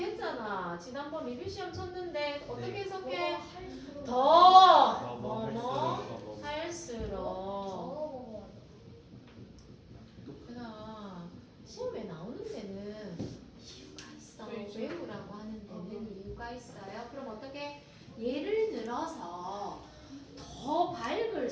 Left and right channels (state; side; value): identical; both; correlation 1.00